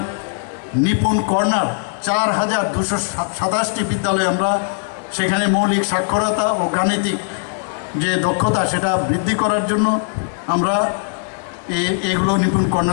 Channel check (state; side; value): silent; right; digital silence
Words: নিপুণ কর্নার 4,227টি বিদ্যালয়ে আমরা সেখানে মৌলিক সাক্ষরতা ও গাণিতিক যে দক্ষতা সেটা বৃদ্ধি করার জন্য আমরা এগুলো নিপুণ